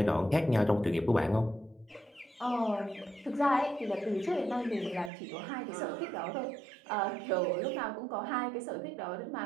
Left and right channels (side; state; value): left; drops out; at 5.1 s